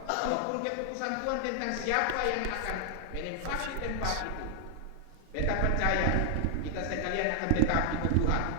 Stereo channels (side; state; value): both; different; correlation 0.00